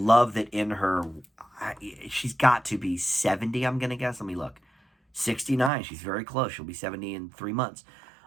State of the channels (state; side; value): drops out; left; at 5.7 s